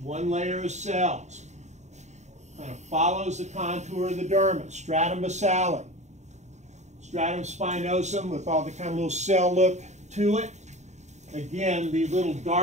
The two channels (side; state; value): left; late; 0.34 ms